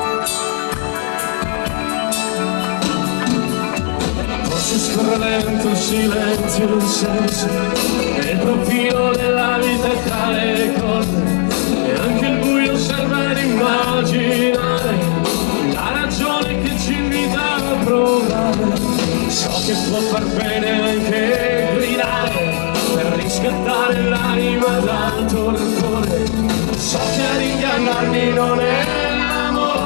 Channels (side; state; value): right; silent; digital silence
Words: Scorre lento il silenzio d'un senso e il profilo della vita tra le cose e anche il buio serve ad immaginare la ragione che ci invita a provare. So che può far bene anche gridare per riscattare l'anima dal torpore. So che ad ingannarmi non è